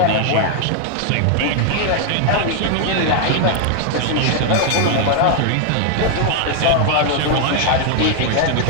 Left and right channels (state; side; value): different; both; correlation 0.00